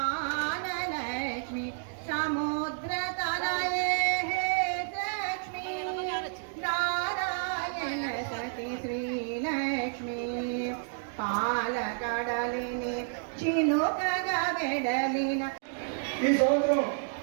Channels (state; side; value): silent; left; digital silence